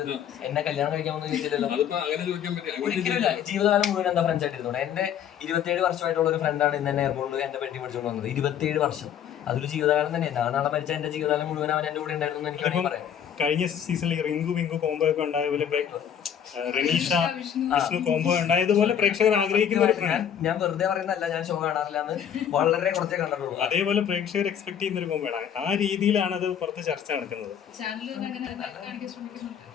എന്നെ കല്യാണം കഴിക്കാമെന്ന് ചോദിച്ചില്ലല്ലോ. അതിപ്പോ അങ്ങനെ ചോദിക്കാൻ പറ്റും. ഒരിക്കലില്ല. ജീവിതകാലം മുഴുവൻ എന്താ ഫ്രണ്ട്സ് ആയിട്ടിരുന്നോണ്ട്. എന്റെ 27 വർഷമായിട്ടുള്ള ഒരു ഫ്രണ്ടാണ് ഇന്ന് എന്നെ എയർപോർട്ടിൽ എന്റെ പെട്ടി പിടിച്ചുകൊണ്ട് വന്നത്. 27 വർഷം, അതൊരു ജീവിതകാലം തന്നെ. ഞാൻ നാളെ മരിച്ച എന്റെ ജീവിതകാലം മുഴുവൻ അവൻ എന്റെ കൂടെ ഉണ്ടായിരുന്നു എന്ന് എനിക്ക് വേണമെങ്കിൽ പറയാം. കഴിഞ്ഞ സീസണിൽ റിങ്കു വിങ്കു കോംബോ ഒക്കെ ഉണ്ടായ പോലെ റനീഷ വിഷ്ണു കോംബോ ഉണ്ടായതുപോലെ പ്രേക്ഷകർ ആഗ്രഹിക്കുന്ന ഒരു പ്രണയം. ഞാൻ വെറുതെ പറയുന്നതല്ല, ഞാൻ ഷോ കാണാറില്ല എന്ന് വളരെ കുറച്ചേ കണ്ടിട്ടുള്ളൂ. അതേപോലെ പ്രേക്ഷകർ എക്സ്പെക്ട് ചെയ്യുന്ന ഒരു കോംബോ ആണ്. ആ രീതിയിലാണ് അത് പുറത്ത് ചർച്ച നടക്കുന്നത്.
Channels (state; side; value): quieter; right; 9.0 dB